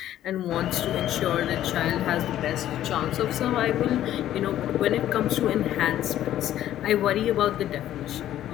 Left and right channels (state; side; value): quieter; right; 12.3 dB